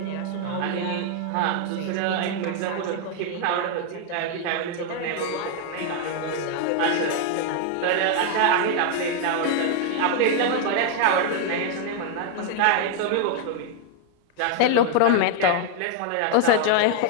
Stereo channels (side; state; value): both; different; correlation 0.00